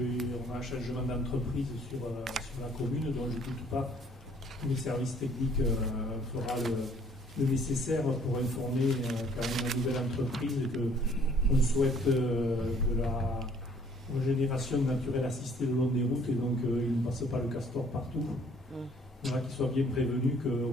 a un changement d'entreprise sur la commune, dont je ne doute pas que les services techniques fera le nécessaire pour informer quand même la nouvelle entreprise qu'on souhaite de la régénération naturelle assistée le long des routes, et donc il ne passe pas le castor partout. Voilà, qu'ils soient bien prévenus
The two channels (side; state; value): both; normal; correlation 0.59